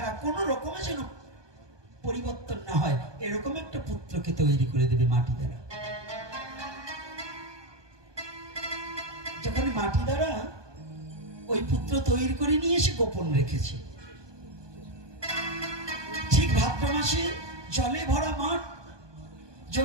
কোন রকমে যেন পরিবর্তন না হয়, এরকম একটা পুত্রকে তৈরি করে দেবে মাটি দ্বারা। যখন মাটি দ্বারা ওই পুত্র তৈরি করে নিয়ে এসে গোপন রেখেছে, ঠিক ভাদ্র মাসে জলে ভরা মাঠ,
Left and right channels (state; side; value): late; left; 1.2 ms